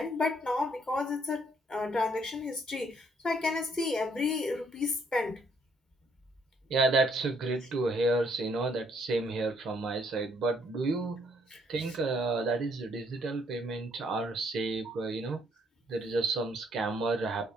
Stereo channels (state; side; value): normal; both; correlation 0.68